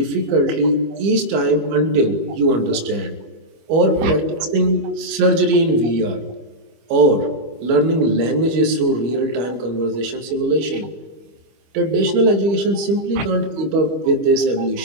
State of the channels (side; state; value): left; late; 25 ms